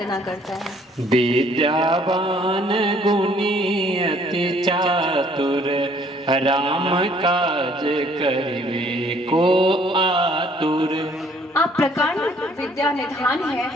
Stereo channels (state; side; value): normal; both; correlation 0.61